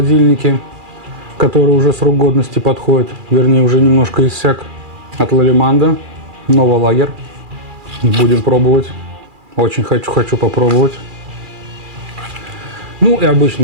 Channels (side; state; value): left; late; 2.4 ms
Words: который уже срок годности подходит. Вернее, уже немножко иссяк. От Лалиманда. Новолагер. Будем пробовать. Очень хочу попробовать. Ну и